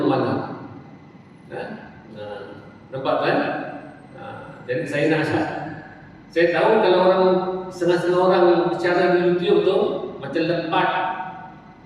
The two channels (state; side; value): identical; both; correlation 1.00